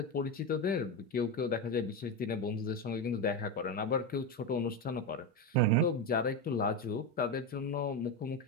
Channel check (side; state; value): both; normal; correlation 0.14